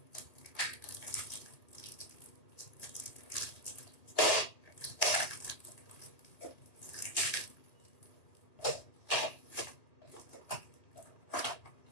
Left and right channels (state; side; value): late; right; 2.3 ms